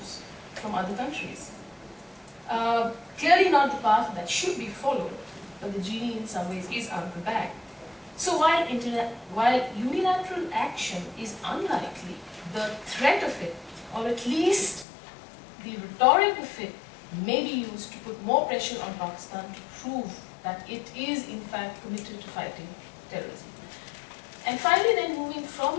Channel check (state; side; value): drops out; right; at 14.9 s